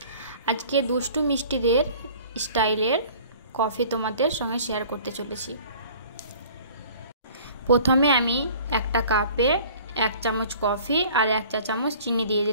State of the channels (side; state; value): both; inverted; correlation -0.48